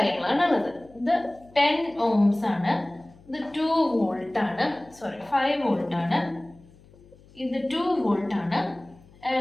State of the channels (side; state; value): left; noise; hum, 26 dB below the sound